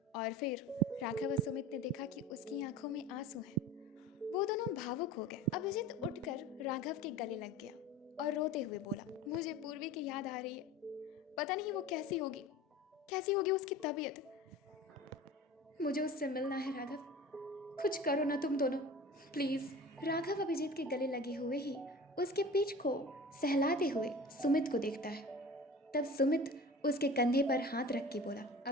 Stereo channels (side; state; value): both; normal; correlation 0.38